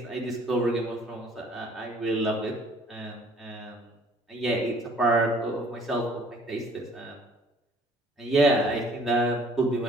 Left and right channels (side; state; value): both; normal; correlation 0.56